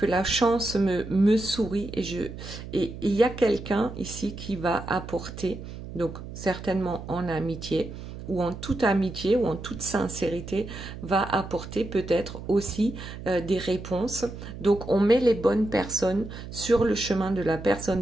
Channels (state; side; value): noise; right; hum, 11 dB below the sound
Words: la chance me sourit et il y a quelqu'un ici qui va apporter, donc certainement en amitié ou en toute amitié ou en toute sincérité, va apporter peut-être aussi des réponses. Donc on met les bonnes personnes sur le chemin de la